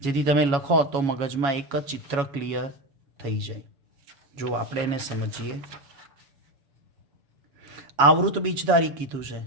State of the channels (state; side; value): late; left; 7.2 ms